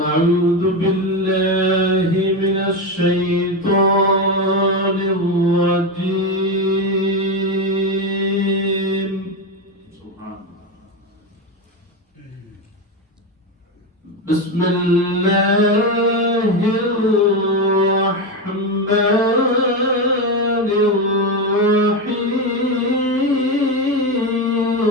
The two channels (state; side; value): normal; both; correlation 0.14